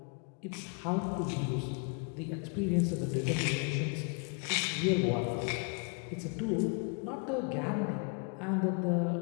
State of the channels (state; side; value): quieter; right; 37.1 dB